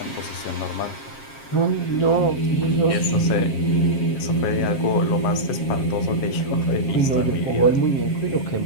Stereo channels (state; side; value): late; right; 7.5 ms